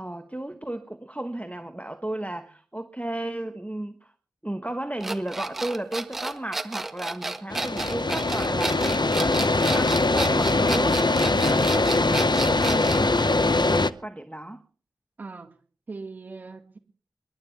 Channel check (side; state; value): both; normal; correlation 0.67